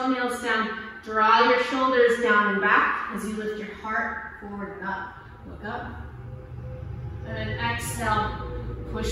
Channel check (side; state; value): both; identical; correlation 1.00